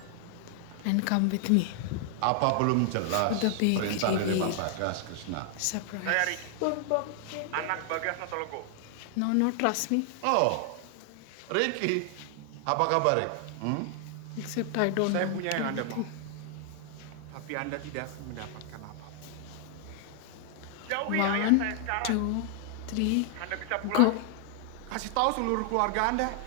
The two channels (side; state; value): both; different; correlation 0.00